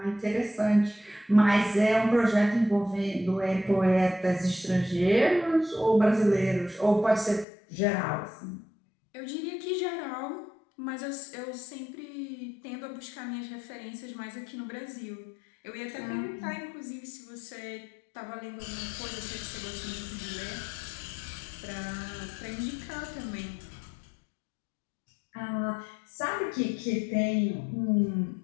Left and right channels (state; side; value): drops out; right; at 7.5 s